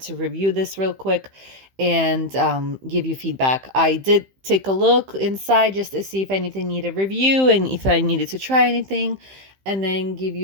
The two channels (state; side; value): late; left; 15 ms